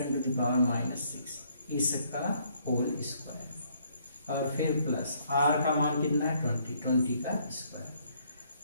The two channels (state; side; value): inverted; both; correlation -0.67